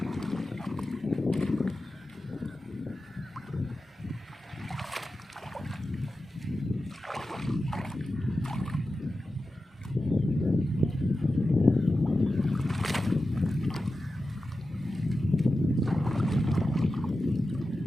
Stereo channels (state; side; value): normal; both; correlation 0.93